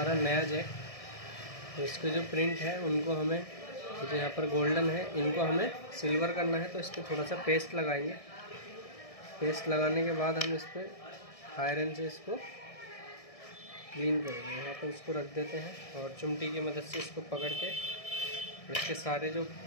नया जैक, तो इसके जो प्रिंट है उनको हमें, जो यहाँ पर गोल्डन है, इनको हमें सिल्वर करना है। तो इस पर थोड़ा सा पेस्ट लगाएंगे। पेस्ट लगाने के बाद हम इस पर आयरन से इसको क्लीन करेंगे। यहाँ पर इसको रख देते हैं और चिमटी की मदद से इसको पकड़ के इसके सारे जो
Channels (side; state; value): right; late; 1.7 ms